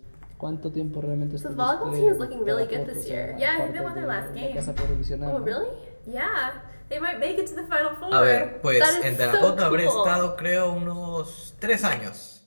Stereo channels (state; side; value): inverted; both; correlation -1.00